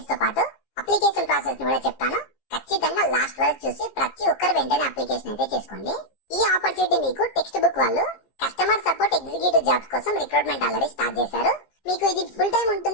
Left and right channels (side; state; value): right; late; 15 ms